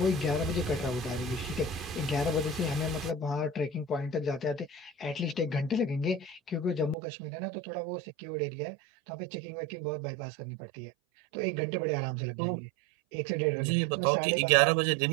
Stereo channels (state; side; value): drops out; left; at 7.0 s